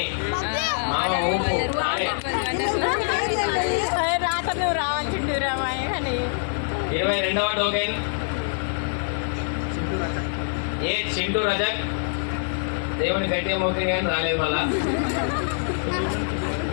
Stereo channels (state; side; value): silent; right; digital silence